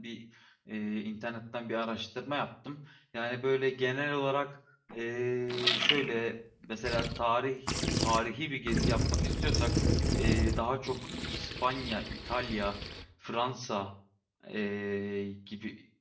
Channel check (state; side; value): identical; both; correlation 1.00